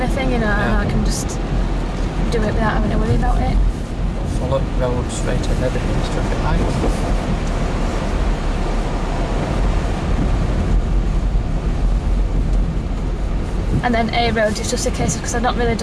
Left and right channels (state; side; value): identical; both; correlation 1.00